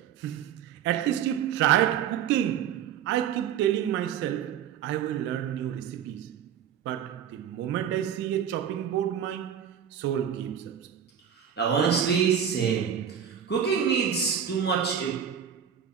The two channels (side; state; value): left; quieter; 8.7 dB